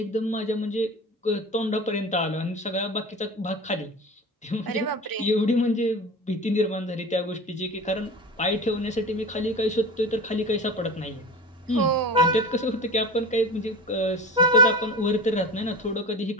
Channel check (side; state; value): both; normal; correlation 0.31